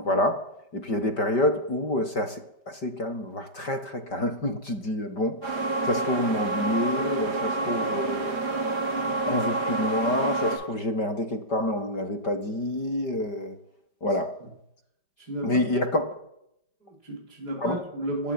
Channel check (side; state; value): right; late; 5.1 ms